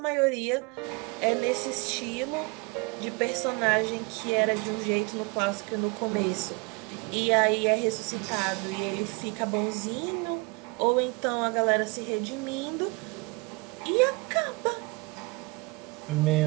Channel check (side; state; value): left; quieter; 28.1 dB